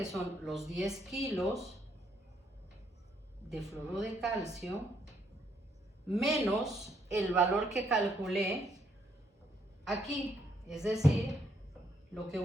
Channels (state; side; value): normal; both; correlation 0.72